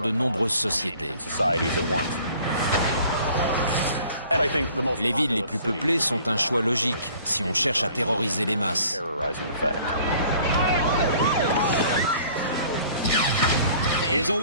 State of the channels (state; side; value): inverted; both; correlation -0.53